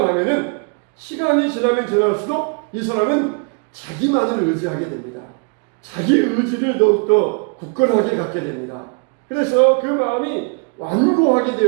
하면은 시간이 지나면 지날수록 이 사람은 자기만을 의지하게 됩니다. 자기 의지를 더욱더 굳건하게 갖게 됩니다. 그래서 그 마음이 완고하게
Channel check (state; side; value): quieter; left; 38.2 dB